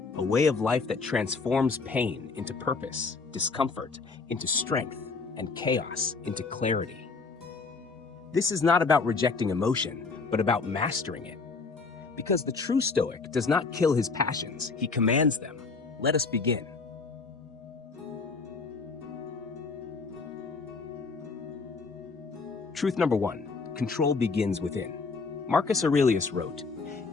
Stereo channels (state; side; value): quieter; right; 4.4 dB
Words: a way of life that transforms pain into purpose, discomfort into strength, and chaos into clarity. This is not about rejecting emotion, but about mastering it. Because the true Stoic does not kill his passions, he commands them. Let us begin. Truth number 1, control begins within. Marcus Aurelius wrote,